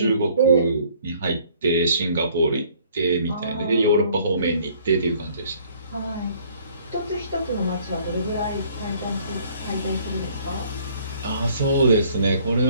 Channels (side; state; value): both; inverted; correlation -0.59